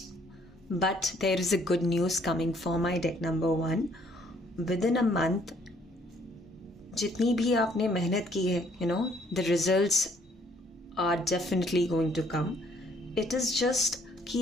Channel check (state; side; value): normal; both; correlation 0.64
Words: But there is a good news coming for my deck number 1. Within a month जितनी भी आपने मेहनत की है, the results are definitely going to come. It is just